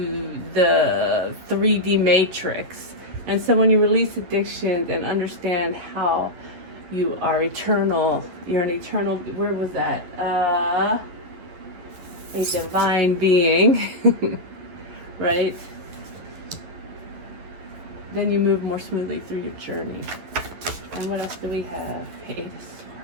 the 3D matrix. And so when you release addictions and understand how you are eternal, you're an eternal, where was that? A divine being, right? Then you move more smoothly through your journey. And what else do we have? Eight of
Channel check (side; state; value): left; late; 11 ms